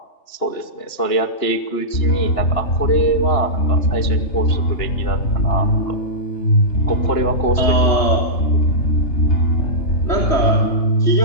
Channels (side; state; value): right; late; 2.9 ms